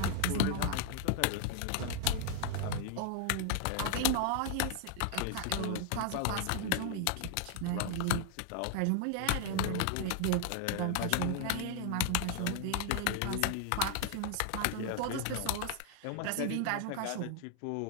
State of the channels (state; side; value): different; both; correlation 0.00